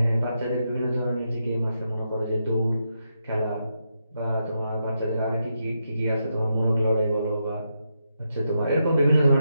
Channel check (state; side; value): inverted; both; correlation -0.84